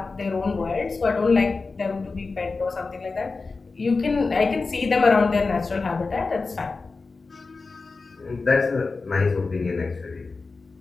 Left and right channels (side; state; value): right; quieter; 4.0 dB